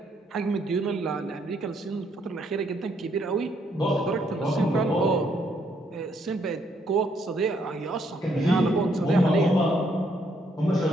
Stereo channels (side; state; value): both; normal; correlation 0.71